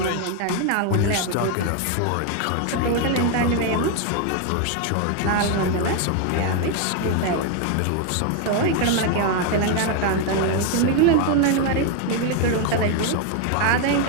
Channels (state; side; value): different; both; correlation 0.01